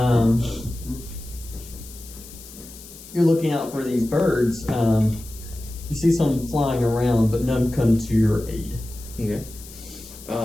You're looking out for these birds. You see some flying around, but none come to your aid. Okay.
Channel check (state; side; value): noise; left; hiss, 17 dB below the sound